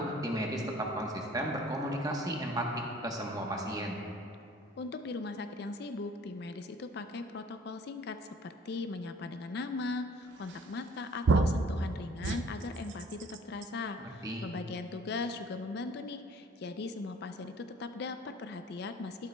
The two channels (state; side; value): normal; both; correlation 0.53